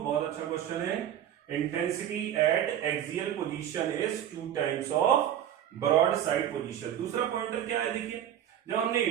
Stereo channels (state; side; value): quieter; left; 10.6 dB